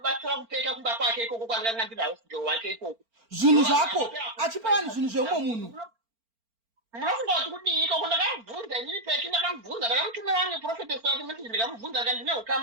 kupeka kumba kwake ikoko kwandanga ndiri hausgirl wake ikoko zvinhu zvako achipa vanhu zvinhu zveumwe munhu munofunga kuti kudii ikoko ndakamubvunza inini peki ndakamubvunza ndakamutumira wange profetesi wake message ndikamubvunza ka ndine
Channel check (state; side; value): late; left; 4.4 ms